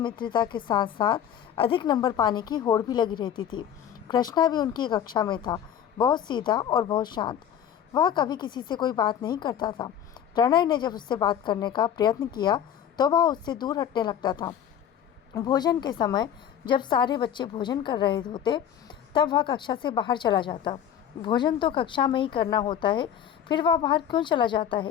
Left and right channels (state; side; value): quieter; right; 9.5 dB